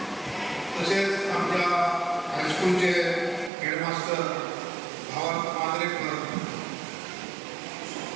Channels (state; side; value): drops out; left; at 3.5 s